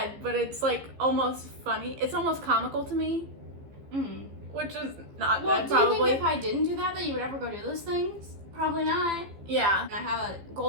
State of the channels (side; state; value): left; late; 15 ms